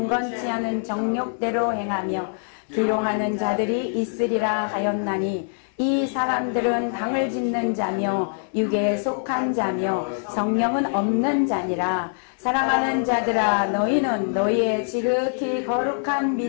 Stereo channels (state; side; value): silent; right; 63 dB below the other